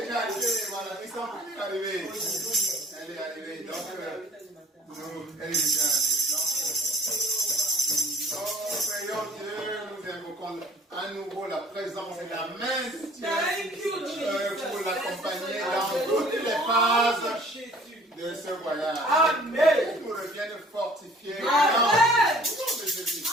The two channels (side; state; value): both; normal; correlation 0.53